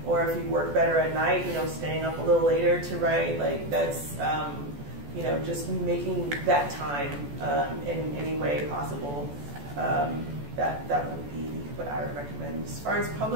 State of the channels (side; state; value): left; late; 14 ms